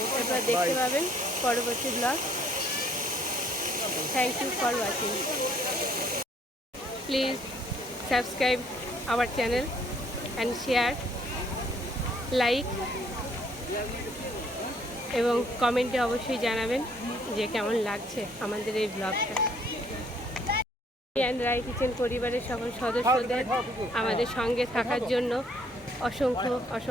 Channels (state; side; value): normal; both; correlation 0.63